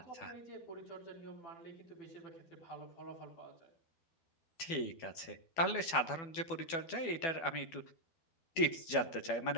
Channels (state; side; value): late; right; 12 ms